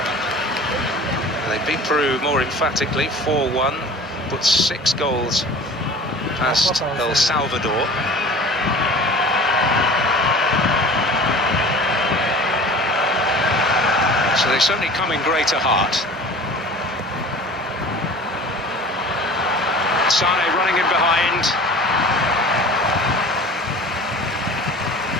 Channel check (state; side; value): normal; both; correlation 0.41